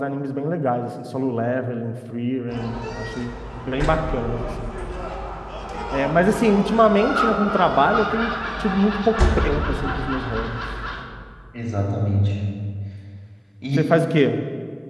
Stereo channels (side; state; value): both; identical; correlation 1.00